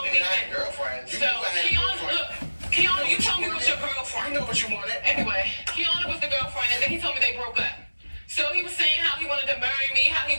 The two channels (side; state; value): both; inverted; correlation -1.00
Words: me that. Girlfriend. So Kiana, look, Kiana, you told me it was your girlfriend. You know what you wanted. Anyway, Kiana was the girlfriend, and then he told me they broke up. So he was saying how he wanted to marry me, how he